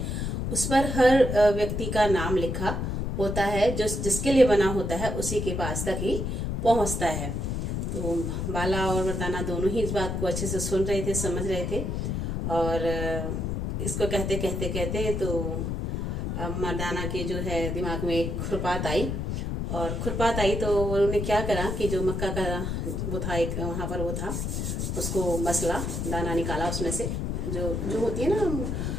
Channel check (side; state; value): left; noise; rumble, 2 dB below the sound